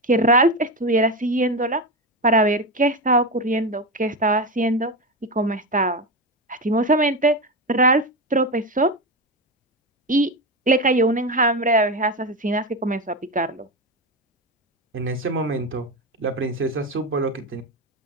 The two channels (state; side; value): normal; both; correlation 0.17